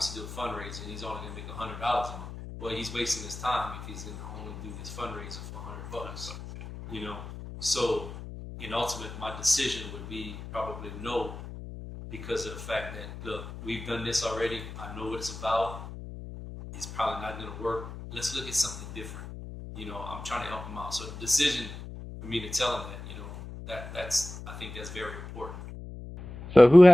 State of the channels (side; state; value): left; noise; hum, 11 dB below the sound